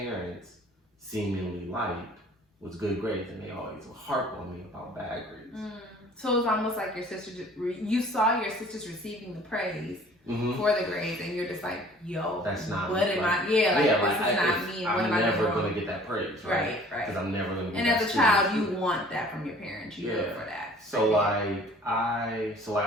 seemingly liked was good grades, and they always would harp on me about bad grades. So it was almost like your sister, you saw your sisters receiving the praise for the grades, and you're just like, yo, that's not what am I? Yeah, like this is not me. And what am I never gonna get that praise, right? Right. Because I'm never gonna. Get and that as a child, you want that from your parents. You look for that. So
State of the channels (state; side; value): normal; both; correlation 0.51